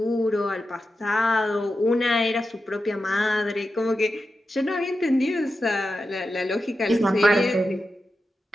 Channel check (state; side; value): normal; both; correlation 0.90